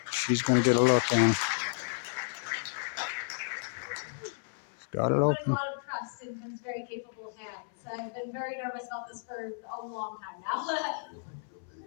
she's going to get a look in. Got it We're open. putting a lot of trust in Tim's very capable hands. I've been very nervous about this for a long time now.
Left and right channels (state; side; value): silent; right; 56 dB below the other